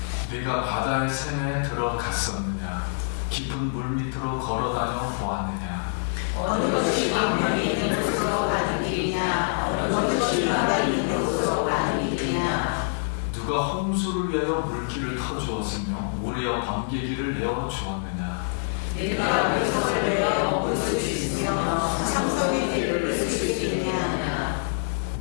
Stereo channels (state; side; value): silent; right; digital silence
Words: 네가 바다의 샘에 들어갔었느냐. 깊은 물 밑으로 걸어다녀 보았느냐. 어느 것이 광명이 있는 곳으로 가는 길이냐. 어느 것이 바람이 있는 곳으로 가는 길이냐. 누가 홍수를 위하여 물길을 터주었으며 우리와 번개기를 내어 주었느냐. 내가 물성을 내어 먹을 수 있으며 창성의 길을 쓸 수 있느냐.